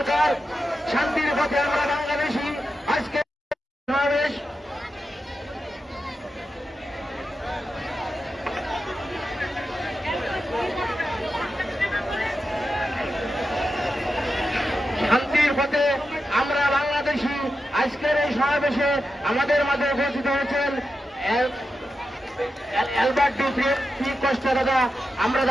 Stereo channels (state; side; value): normal; both; correlation 0.89